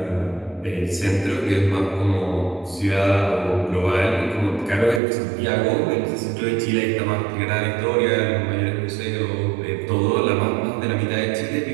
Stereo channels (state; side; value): drops out; left; at 5.0 s